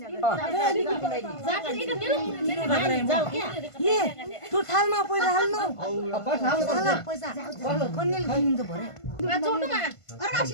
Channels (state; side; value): late; right; 1.5 ms